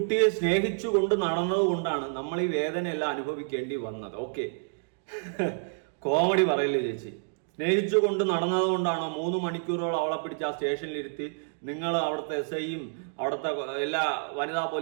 സ്നേഹിച്ചു കൊണ്ട് നടന്നത് കൊണ്ടാണ് നമ്മൾ ഈ വേദനയെല്ലാം അനുഭവിക്കേണ്ടി വന്നത്. ഓക്കെ, കോമഡി പറയില്ലേ ചേച്ചി. സ്നേഹിച്ചു കൊണ്ട് നടന്നത് കൊണ്ടാണോ 3 മണിക്കൂറോളം അവളെ പിടിച്ച് ആ സ്റ്റേഷനിലിരുത്തി നിങ്ങൾ അവിടുത്തെ എസ് ഐയും അവിടുത്തെ എല്ലാ വനിതാ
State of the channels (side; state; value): left; silent; digital silence